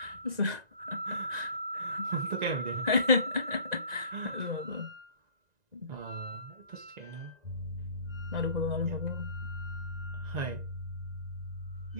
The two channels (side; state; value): left; late; 1.9 ms